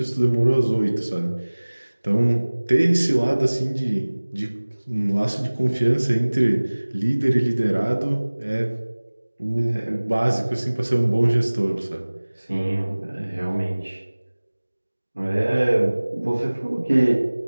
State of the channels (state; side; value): inverted; both; correlation -1.00